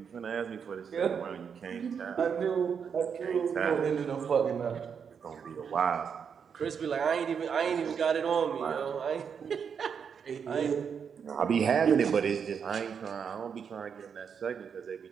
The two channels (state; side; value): quieter; left; 6.9 dB